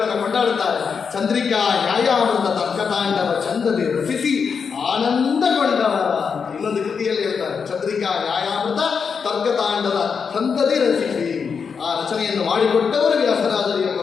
ಕೊಂಡಾಡುತ್ತಾರೆ. ಚಂದ್ರಿಕಾ, ನ್ಯಾಯಾಮೃತ, ತರ್ಕತಾಂಡವ ಚಂದದೆ ರಚಿಸಿ ಆನಂದಗೊಂಡವರ. ಇನ್ನೊಂದು ಕೃತಿಯಲ್ಲಿ ಹೇಳ್ತಾರೆ, ಚಂದ್ರಿಕಾ, ನ್ಯಾಯಾಮೃತ, ತರ್ಕತಾಂಡವ ಚಂದದೆ ರಚಿಸಿ. ಆ ರಚನೆಯನ್ನು ಮಾಡಿಕೊಟ್ಟವರು ವ್ಯಾಸರಾಜರು ಎಂಬ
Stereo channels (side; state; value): right; quieter; 6.0 dB